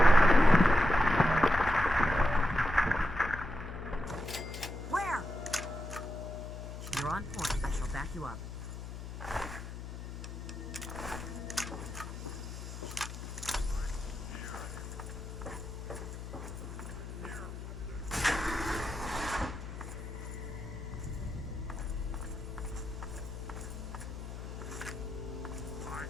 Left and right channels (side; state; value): left; noise; hum, 9 dB below the sound